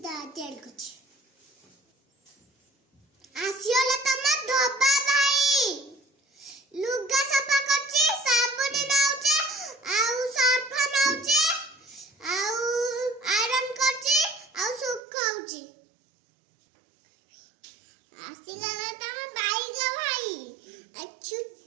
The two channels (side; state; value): left; drops out; at 15.0 s